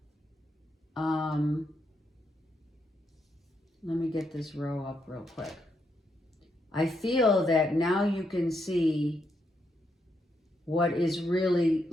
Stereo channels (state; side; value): normal; both; correlation 0.79